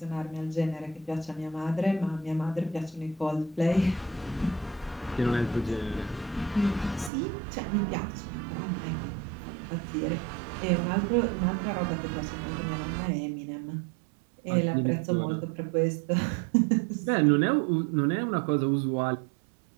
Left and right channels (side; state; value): left; drops out; at 7.1 s